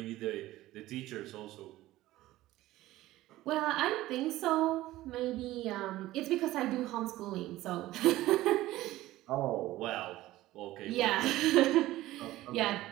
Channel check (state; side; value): quieter; left; 16.3 dB